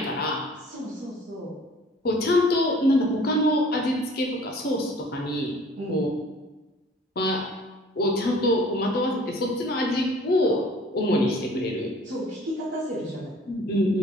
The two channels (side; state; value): both; normal; correlation 0.51